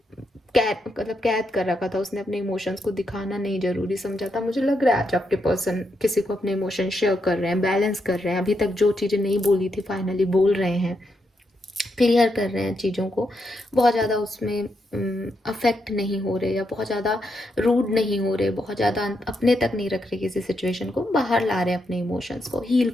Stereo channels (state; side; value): normal; both; correlation 0.81